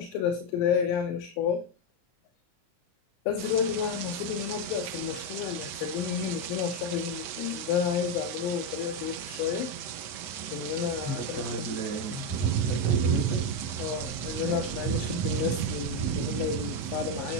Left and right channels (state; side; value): late; right; 23 ms